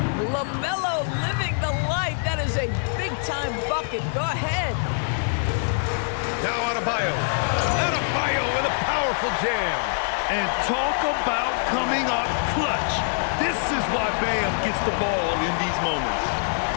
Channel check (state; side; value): silent; right; 62 dB below the other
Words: LaMelo living the life. That is a big-time bucket. Go ahead. Now Adebayo. Adebayo with a powerful jam. And talk about coming up clutch. This is why Bam gets the ball in these moments.